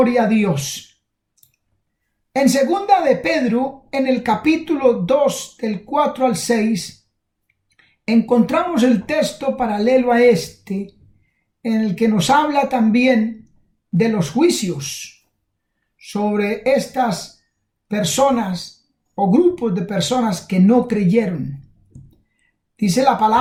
a Dios. En segunda de Pedro, en el capítulo 2, del 4 al 6, encontramos el texto paralelo a este, en el que nos habla también de los juicios sobre estas personas o grupos de personas que no creyeron. Dice la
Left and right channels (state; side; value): identical; both; correlation 1.00